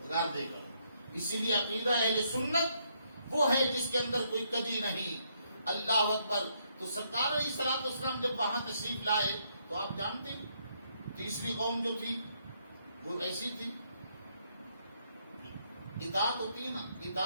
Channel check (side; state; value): both; inverted; correlation -0.73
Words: دے گا. اسی لیے عقیدہ اہل سنت وہ ہے جس کے اندر کوئی کجی نہیں. اللہ اکبر. تو سرکار علیہ الصلوۃ والسلام جب وہاں تشریف لائے تو آپ جانتے ہیں تیسری قوم جو تھی وہ ایسی تھی. اطاعت ہوتی ہے نا،